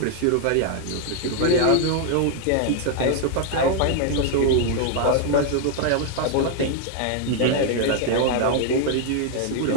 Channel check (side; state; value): both; different; correlation 0.00